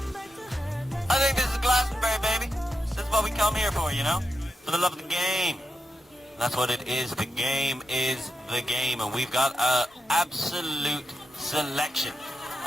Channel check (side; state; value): both; normal; correlation 0.87